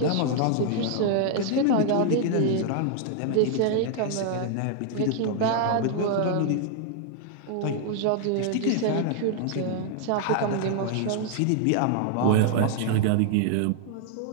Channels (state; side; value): different; both; correlation 0.00